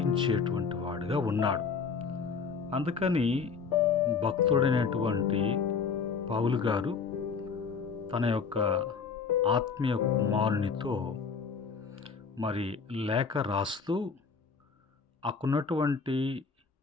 వాడుగా ఉన్నాడు. అందుకని భక్తుడైనటువంటి పౌలు గారు తన యొక్క ఆత్మీయ కుమారునితో మరి లేఖ రాస్తూ అక్కడున్నటువంటి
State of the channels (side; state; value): right; quieter; 5.5 dB